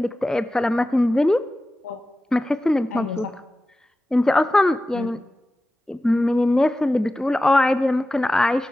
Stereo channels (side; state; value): both; normal; correlation 0.95